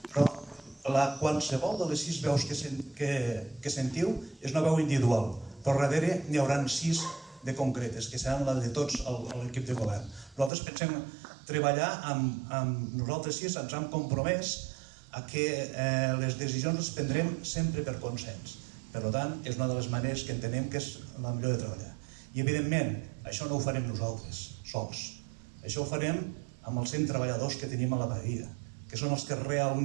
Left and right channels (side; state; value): left; drops out; at 10.5 s